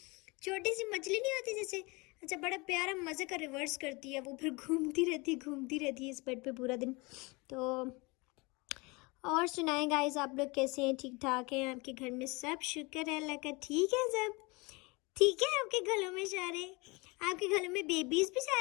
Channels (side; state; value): right; quieter; 26.4 dB